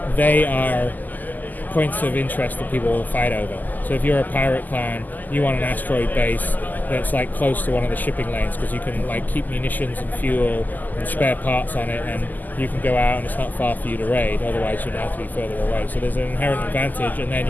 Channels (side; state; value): right; late; 0.084 ms